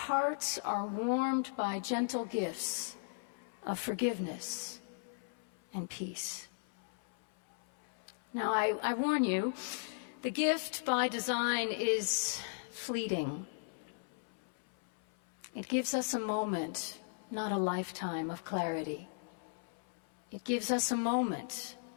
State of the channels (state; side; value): silent; right; 53 dB below the other